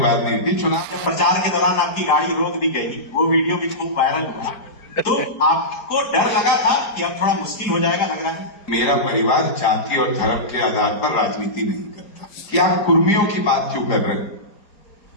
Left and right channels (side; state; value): right; late; 4.9 ms